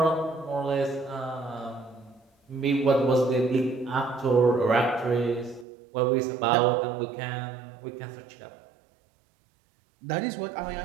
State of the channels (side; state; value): left; drops out; at 5.7 s